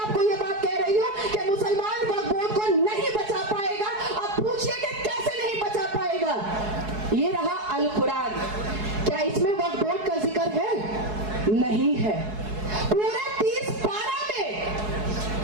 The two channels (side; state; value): left; late; 4.7 ms